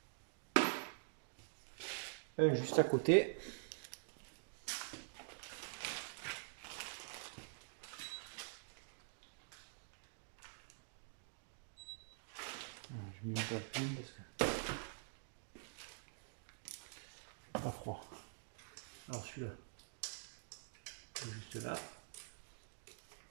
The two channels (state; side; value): silent; left; digital silence